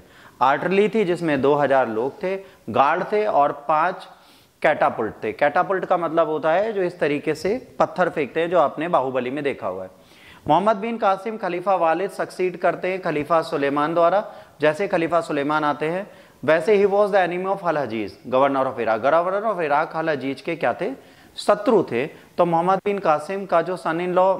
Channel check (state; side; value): identical; both; correlation 1.00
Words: आर्टरली थी जिसमें 2,000 लोग थे, गार्ड थे और 5 कैटापुल्ट थे। कैटापुल्ट का मतलब होता है जो इस तरीके से पत्थर फेंकते हैं, जो आपने बाहुबली में देखा हुआ है। मोहम्मद बिन कासिम खलीफा वालिद सक्सीड करते हैं खलीफा सुलेमान द्वारा। जैसे खलीफा सुलेमान आते हैं वैसे ही was the enemy of Al Hajjaj, governor of Iraq. Governor of Iraq Al Hajjaj के क्या थे? शत्रु थे। तो मोहम्मद बिन कासिम का जो सन इन लॉ